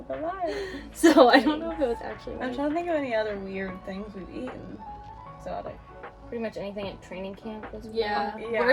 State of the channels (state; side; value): identical; both; correlation 1.00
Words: caballo. So I don't know if it was actually I'm right. trying to think of any other weird things we've eaten. So like, Pretty much anything at training camp was Yeah. Yeah.